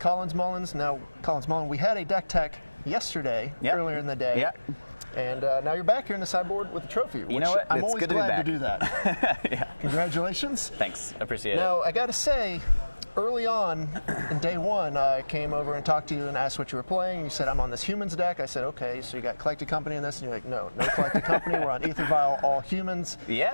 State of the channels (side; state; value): both; inverted; correlation -1.00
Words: Mullins. Now, Collins Mullen, we had a deck tech yesterday, earlier in the day. Yep. And now you're back here in the sideboard with a trophy, which you know what? I'm always glad to do that. Yeah. Congratulations. Thanks. Appreciate it. Now, I got to say, early on in day one, I came over and talked to you and asked what you were playing. You said, I'm on this humans deck. I said, okay, so you got Collected Company in this? And you're like, no Collected Company. We're on Ether Vial, all humans.